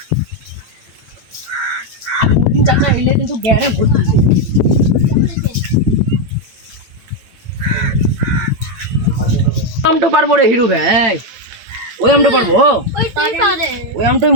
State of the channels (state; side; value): late; left; 8.8 ms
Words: আলিমুদ্দিন চাচা এলে কিন্তু গ্যারে ভর্তি দিছে। আমটা পারবো রে হিরু ভাই, ওই আমটা পারবো। ওই আমটাই